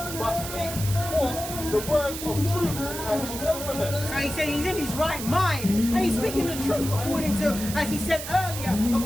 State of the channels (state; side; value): noise; right; hiss, 8 dB below the sound